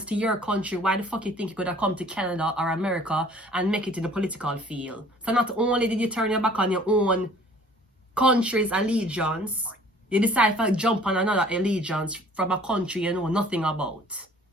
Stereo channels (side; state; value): both; normal; correlation 0.53